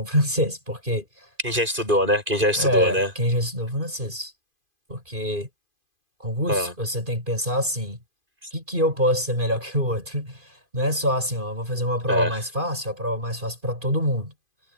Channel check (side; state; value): left; late; 2.5 ms